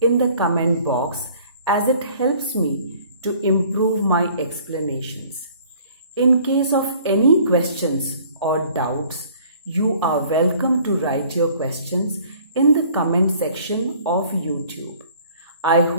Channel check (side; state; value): both; inverted; correlation -0.54